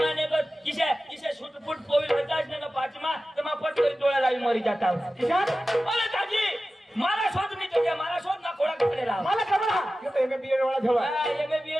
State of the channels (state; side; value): normal; both; correlation 0.95